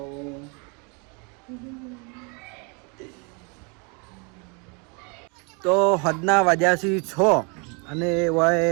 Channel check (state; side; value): quieter; left; 33.2 dB